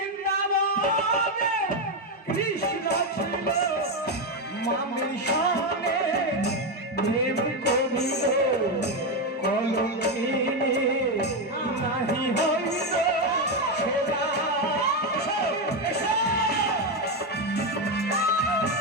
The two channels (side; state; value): both; normal; correlation 0.08